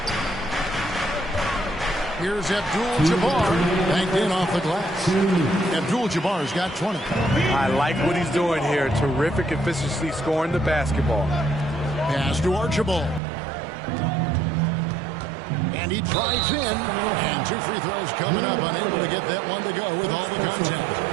Here's Abdul-Jabbar, banked in off the glass. Abdul-Jabbar's got 20. I like what he's doing here. Terrific efficiency scoring the basketball. Pass to Archibald. And he drives in. And 2 free throws coming up. Unable to get that one to go with all the contact.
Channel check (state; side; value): drops out; left; at 13.2 s